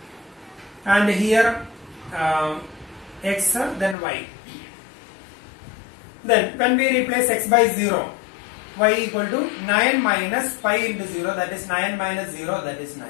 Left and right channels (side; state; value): right; drops out; at 4.0 s